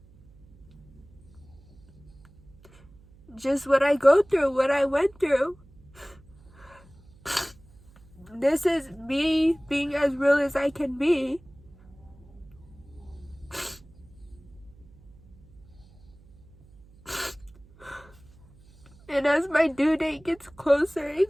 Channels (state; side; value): noise; right; hum, 25 dB below the sound